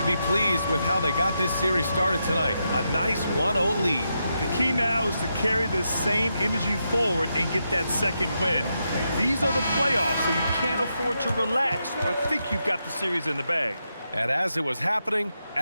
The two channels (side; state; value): both; inverted; correlation -0.84